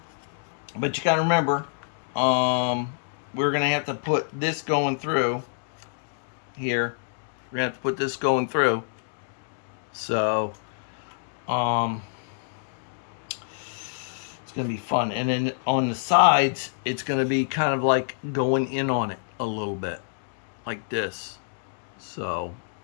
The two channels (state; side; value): silent; right; digital silence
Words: But you gotta remember, we're gonna have to put this going through here. We're gonna have to put this going through. So, it's going to be fun. And then on the sides, it's going to be kind of like going in on it a little bit. Like this. So,